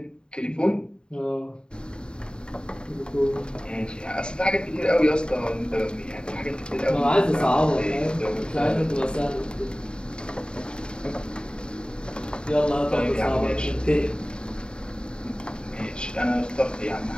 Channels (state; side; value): late; right; 0.050 ms